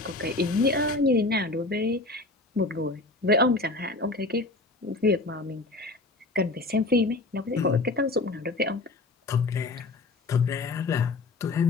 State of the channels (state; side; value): quieter; right; 3.2 dB